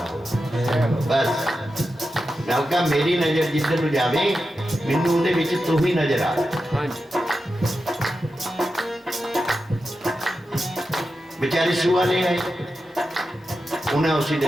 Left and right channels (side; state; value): both; normal; correlation 0.90